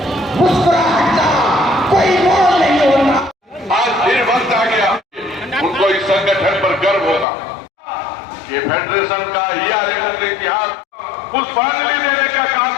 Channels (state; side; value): drops out; right; at 7.2 s